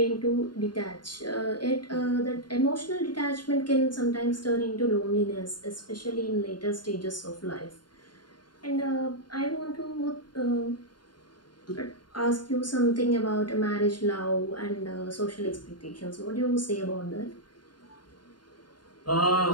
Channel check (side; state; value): right; late; 0.71 ms